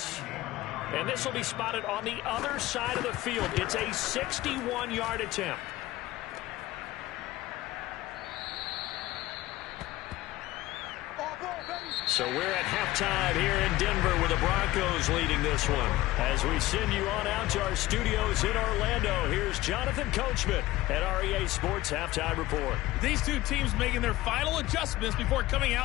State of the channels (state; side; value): quieter; right; 17.1 dB